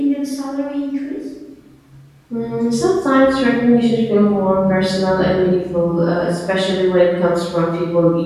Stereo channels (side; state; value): both; identical; correlation 1.00